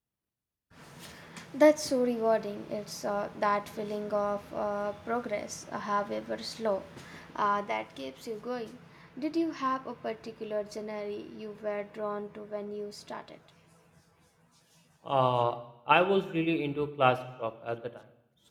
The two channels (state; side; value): identical; both; correlation 1.00